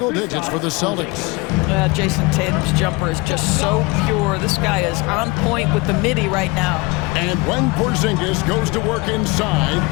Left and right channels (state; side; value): quieter; right; 24.8 dB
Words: digits for the Celtics. Jason Tatum's jumper is just so pure. This guy is on point with the midi right now. And when Porzingis goes to work inside,